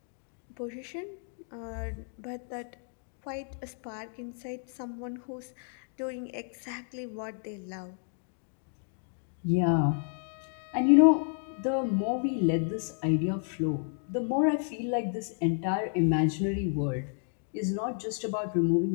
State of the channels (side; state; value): right; silent; 57 dB below the other